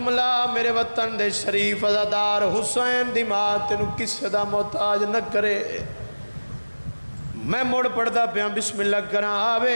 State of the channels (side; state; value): both; inverted; correlation -1.00